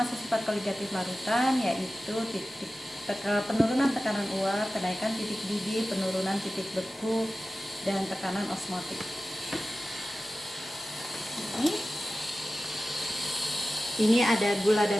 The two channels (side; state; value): both; normal; correlation 0.95